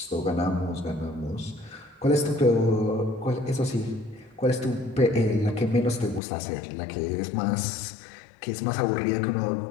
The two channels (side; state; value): right; drops out; at 6.2 s